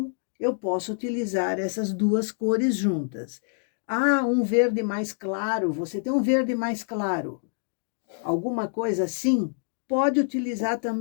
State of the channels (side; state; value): right; silent; digital silence